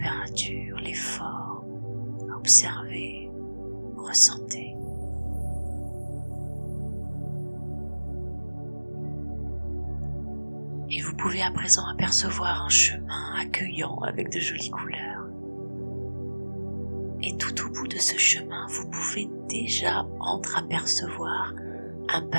les formes. Observez, ressentez. Et vous pouvez à présent apercevoir un chemin accueillant avec de jolies couleurs. Et tout au bout de ce chemin, vous pouvez déjà entreapercevoir un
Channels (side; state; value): both; inverted; correlation -1.00